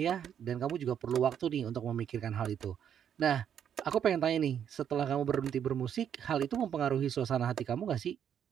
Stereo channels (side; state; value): left; quieter; 8.9 dB